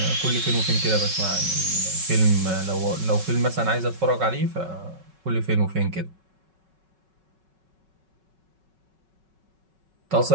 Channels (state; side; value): late; left; 5.4 ms